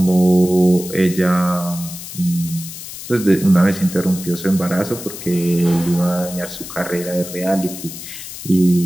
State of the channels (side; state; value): left; noise; hiss, 11 dB below the sound